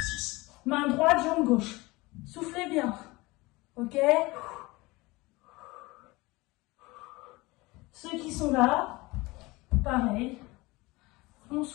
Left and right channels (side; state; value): right; quieter; 22.3 dB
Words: Main droite, jambe gauche. Soufflez bien. Ok? Ceux qui sont là, pareil. On